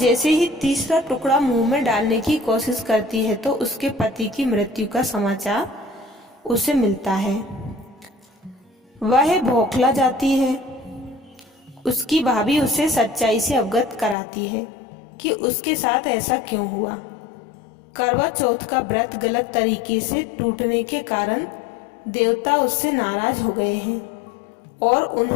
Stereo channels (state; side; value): drops out; right; at 14.2 s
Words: ही तीसरा टुकड़ा मुंह में डालने की कोशिश करती है तो उसके पति की मृत्यु का समाचार उसे मिलता है। वह बौखला जाती है। उसकी भाभी उसे सच्चाई से अवगत कराती है कि उसके साथ ऐसा क्यों हुआ। करवा चौथ का व्रत गलत तरीके से टूटने के कारण देवता उससे नाराज हो गए हैं और